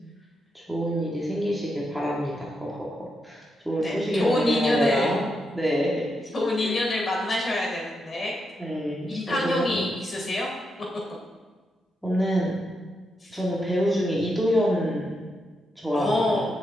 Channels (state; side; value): normal; both; correlation 0.84